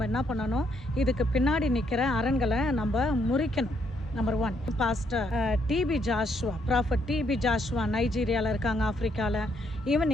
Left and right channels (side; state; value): both; normal; correlation 0.73